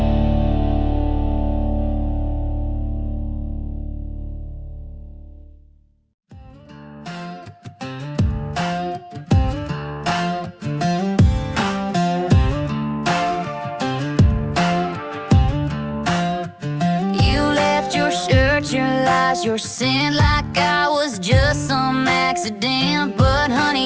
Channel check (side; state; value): both; identical; correlation 1.00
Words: You left your shirt, your lies, your sin like I was just some accident. But